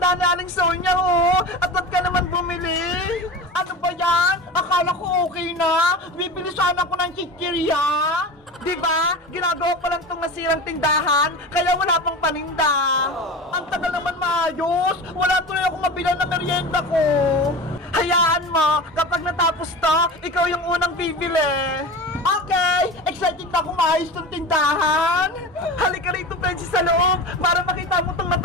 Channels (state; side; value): normal; both; correlation 0.31